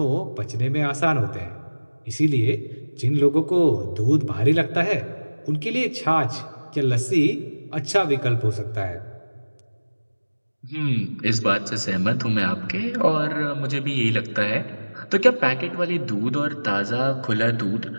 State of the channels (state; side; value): inverted; both; correlation -1.00